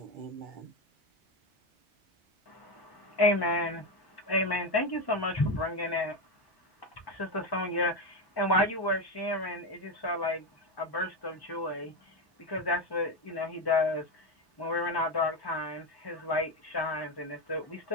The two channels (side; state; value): both; normal; correlation 0.12